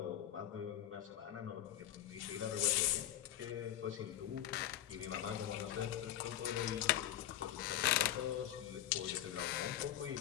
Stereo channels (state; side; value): quieter; right; 12.4 dB